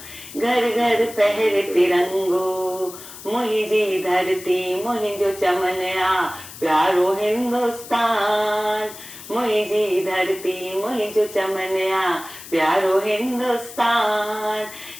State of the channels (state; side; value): noise; left; hiss, 15 dB below the sound